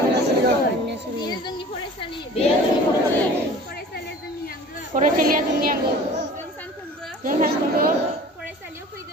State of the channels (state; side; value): normal; both; correlation 0.44